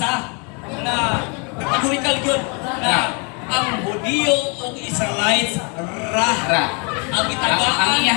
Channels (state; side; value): quieter; right; 34.0 dB